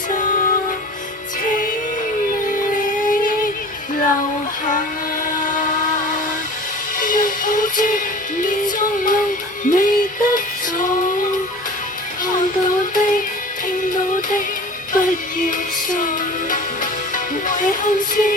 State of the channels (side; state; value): both; normal; correlation 0.40